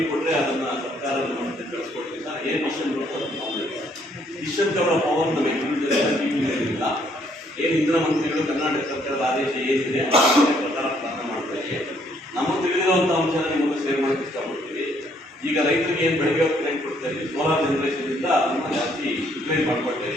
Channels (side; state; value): both; normal; correlation 0.67